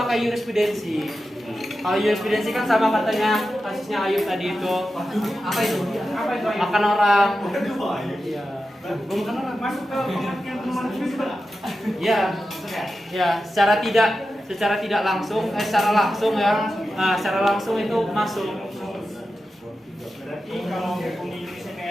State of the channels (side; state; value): both; normal; correlation 0.92